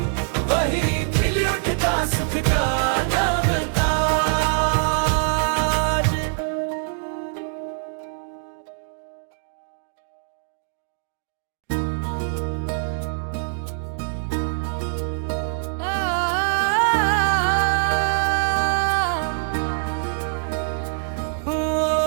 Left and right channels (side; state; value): left; silent; digital silence